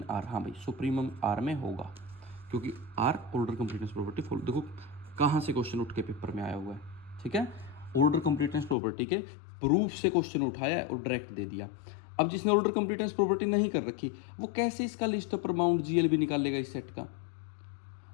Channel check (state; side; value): drops out; right; at 8.8 s